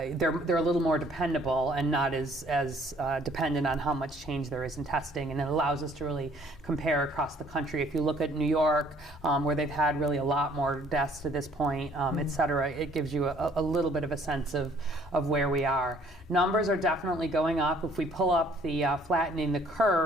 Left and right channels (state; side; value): normal; both; correlation 0.59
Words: they're a little more dependable and not as dependent on how much change there is in testing, and it allows us to really compare across the country. If you look at New York, where they've had really a lot more deaths to this point, et cetera, it gives you a little bit of a sense of where we are. Numbers are definitely going up. If we pull up the flattening the